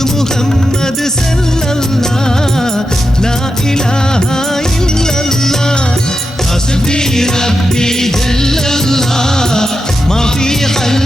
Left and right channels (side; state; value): both; normal; correlation 0.89